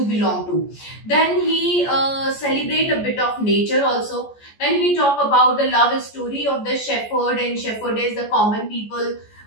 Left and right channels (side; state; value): right; late; 14 ms